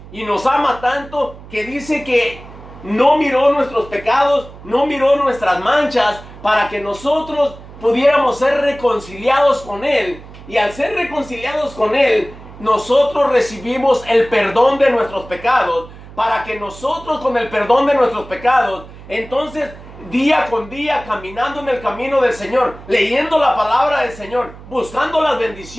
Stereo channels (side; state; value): right; noise; hum, 18 dB below the sound